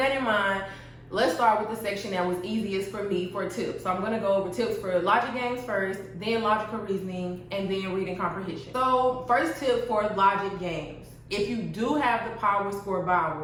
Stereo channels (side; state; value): both; identical; correlation 1.00